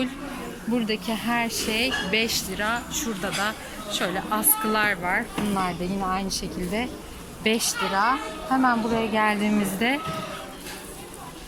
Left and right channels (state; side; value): identical; both; correlation 1.00